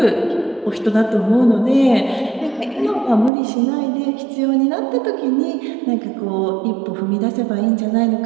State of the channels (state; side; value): drops out; left; at 3.3 s